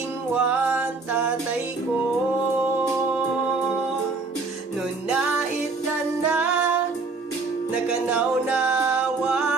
tatay ko Nun naitanak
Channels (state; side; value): quieter; left; 4.0 dB